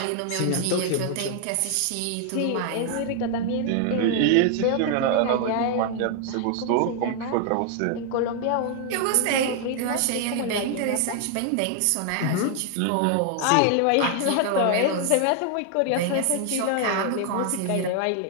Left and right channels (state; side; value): different; both; correlation 0.00